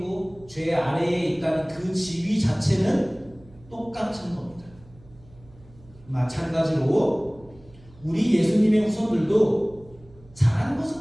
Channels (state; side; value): noise; right; hum, 25 dB below the sound